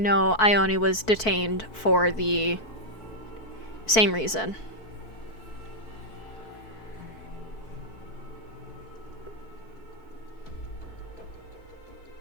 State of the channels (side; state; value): right; late; 4.6 ms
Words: Ione was detained for the same reason.